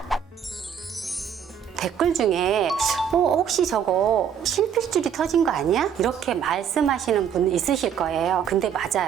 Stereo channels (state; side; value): quieter; left; 8.1 dB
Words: 댓글 중에 혹시 저거 실핏줄이 터진 거 아니야? 이렇게 말씀하시는 분 있으실 거예요. 근데